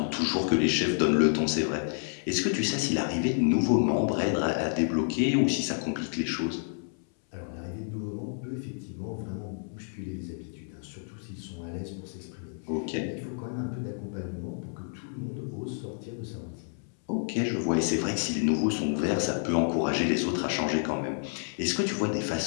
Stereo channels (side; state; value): right; silent; 58 dB below the other